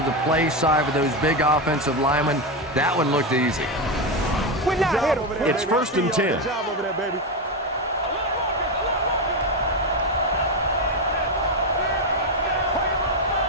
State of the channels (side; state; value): both; normal; correlation 0.11